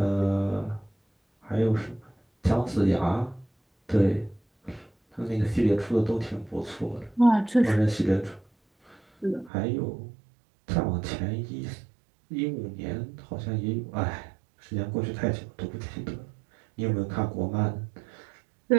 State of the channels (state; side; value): drops out; left; at 9.5 s